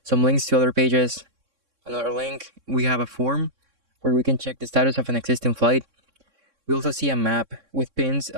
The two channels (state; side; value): late; left; 3.6 ms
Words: some links to other pages, another link. We have a form where we can check the status of an existing flight. We also see a map with pins